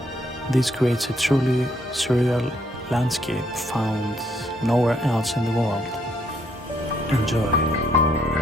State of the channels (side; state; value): both; normal; correlation 0.71